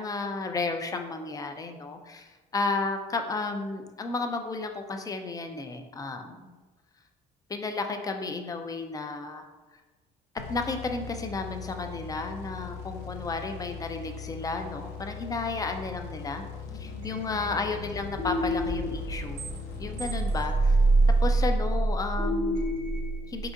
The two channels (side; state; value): both; normal; correlation 0.65